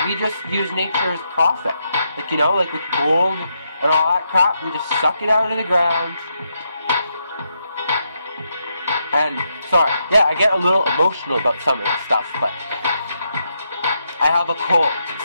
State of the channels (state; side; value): inverted; both; correlation -0.81